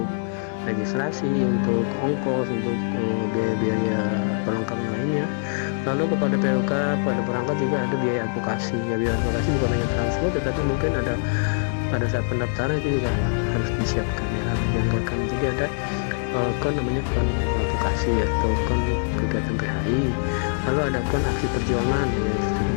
registrasi, untuk ongkos, untuk biaya-biaya perlengkapan lainnya. Lalu kepada PUK, pada perangkat juga ada biaya advokasi ya, biaya advokasi bukan hanya transport tetapi mungkin ada pada saat pendaftaran itu juga harus disiapkan ya, harus dianggarkan. Jadi ada kon namanya kon advokasi atau kon kegiatan PHI, lalu ada kon aksi perjuangan ya,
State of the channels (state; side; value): silent; right; digital silence